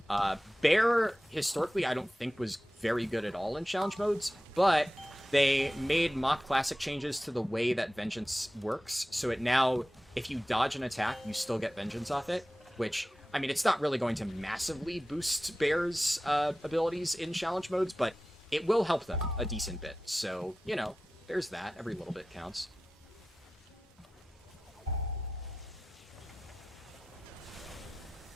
Bear, historically, I don't think was very good at all in challenge modes, but they made Mock Classic changes to the way that Vengeance works, so it now, if you dodge an attack, you still get Vengeance off it, which, I mean, it's not really going to massively boost Bear's abilities in challenge modes, but it will help them a decent bit. So, you know, there's that. Every little bit counts.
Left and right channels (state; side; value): normal; both; correlation 0.95